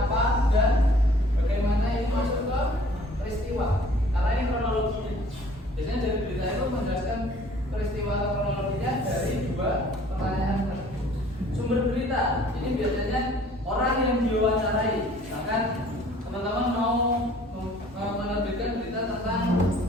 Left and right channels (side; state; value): both; normal; correlation 0.54